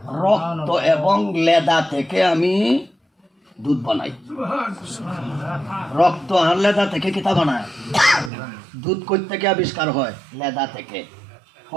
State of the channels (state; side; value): drops out; left; at 8.3 s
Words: রক্ত এবং লেদা থেকে আমি দুধ বানাই। রক্ত আর লেদা থেকে কিতা বানায়? দুধ কই থেকে আবিষ্কার হয়? লেদা থেকে।